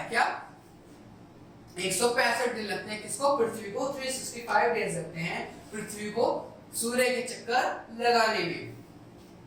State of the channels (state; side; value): identical; both; correlation 1.00